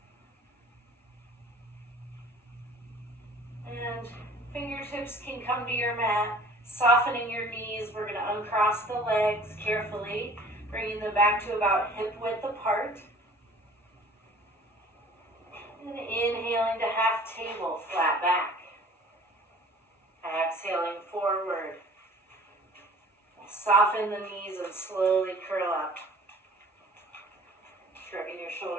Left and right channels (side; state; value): both; normal; correlation 0.48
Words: And fingertips can come to your mat, softening your knees. We're going to uncross the legs carefully, bringing them back to about hip width apart. And inhaling to half table, flat back. Exhaling forward. Soften the knees and slowly curl up. Shrugging your